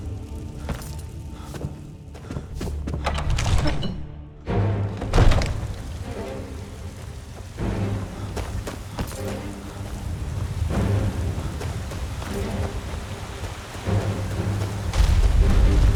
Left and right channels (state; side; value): identical; both; correlation 1.00